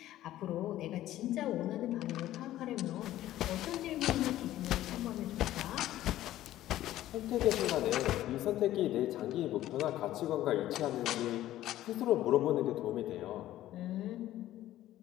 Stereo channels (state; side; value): quieter; right; 14.0 dB